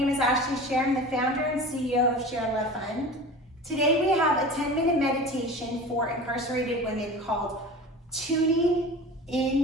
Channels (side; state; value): both; normal; correlation 0.36